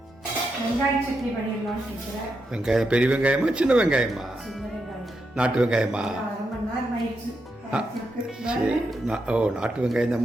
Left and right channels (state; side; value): normal; both; correlation 0.84